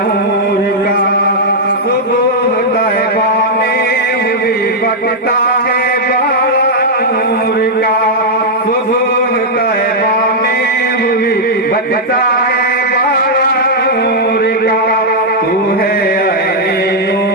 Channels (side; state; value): both; normal; correlation -0.04